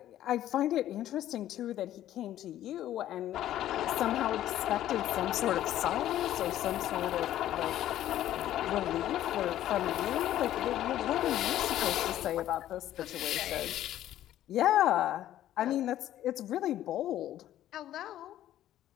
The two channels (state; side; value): quieter; right; 12.7 dB